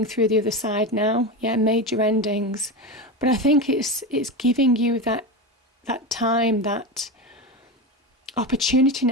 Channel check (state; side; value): normal; both; correlation 0.20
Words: through the other side now. Yeah, major endings. But I think it's giving you that time, that opportunity